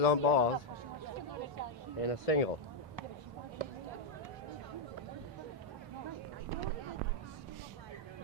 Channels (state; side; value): normal; both; correlation 0.00